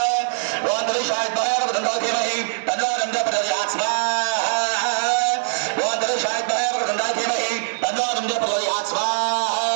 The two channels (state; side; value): silent; left; 64 dB below the other